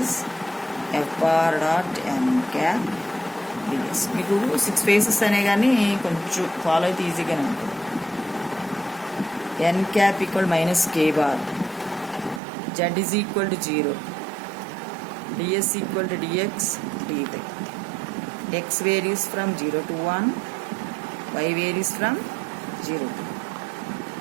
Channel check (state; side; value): drops out; left; at 12.4 s